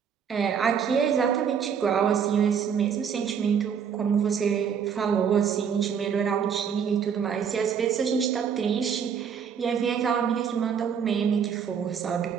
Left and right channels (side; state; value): left; quieter; 7.4 dB